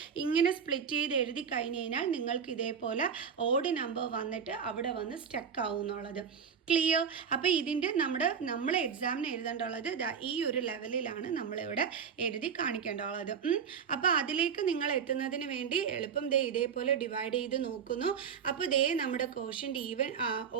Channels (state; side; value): quieter; left; 6.9 dB